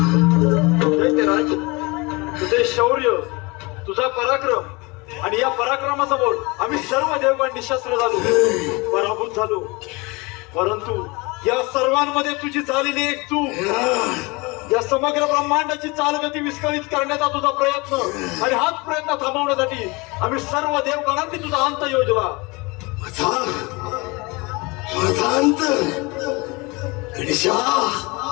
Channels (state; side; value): quieter; right; 26.1 dB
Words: राज, तुझे शौर्य, तुझा पराक्रम आणि या पराक्रमासमोर आम्ही सर्व देवगण निशस्त्र झालो, पराभूत झालो. परंतु या सर्वांमध्ये तुझी झालेली एक चूक, या समग्र ब्रह्मांडाची चालगती विस्कळीत करण्याचा तुझा प्रयत्न आणि हाच प्रयत्न थांबवण्यासाठी आम्ही सर्व देवगणांनी तुझा अंत योजला. माझा अंत गणेशा,